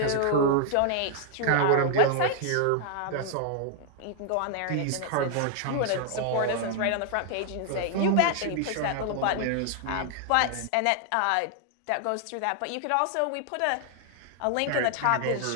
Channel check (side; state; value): both; different; correlation 0.00